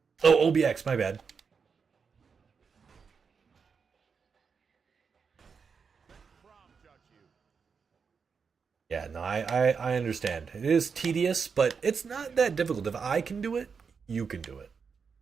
Oh, OBX, my bad. Yeah, no, I understand. It is tedious, but it's not that difficult. If I can do it, you can do it.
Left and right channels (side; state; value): left; quieter; 5.8 dB